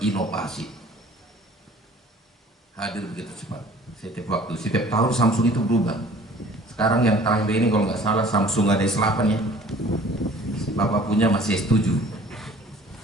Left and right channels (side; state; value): both; normal; correlation 0.50